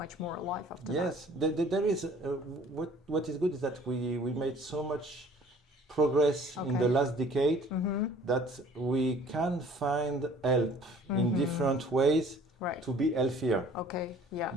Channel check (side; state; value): both; normal; correlation 0.53